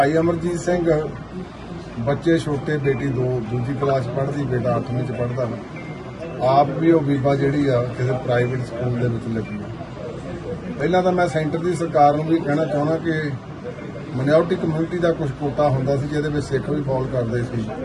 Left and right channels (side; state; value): both; identical; correlation 1.00